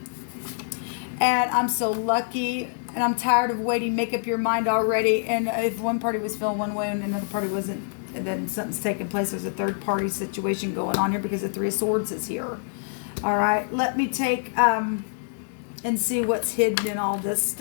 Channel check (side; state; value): right; silent; 61 dB below the other